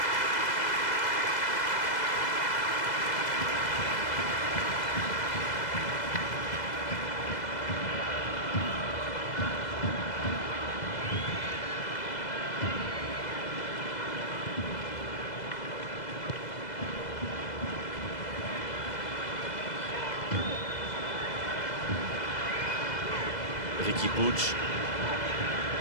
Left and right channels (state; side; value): late; right; 2.0 ms